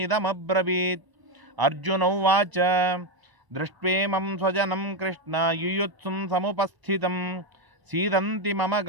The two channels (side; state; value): left; late; 1.0 ms